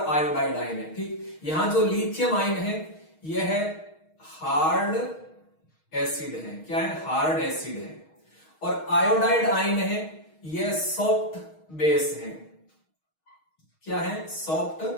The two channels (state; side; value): late; right; 6.4 ms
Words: आयोडाइड आयन है। ठीक, यहां जो लिथियम आयन है यह है हार्ड एसिड है। क्या है, हार्ड एसिड है। और आयोडाइड आयन है यह सॉफ्ट बेस है। क्या है, सॉफ्ट